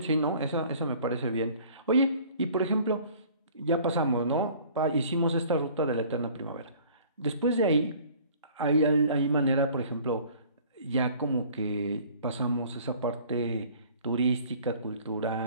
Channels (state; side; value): inverted; both; correlation -0.51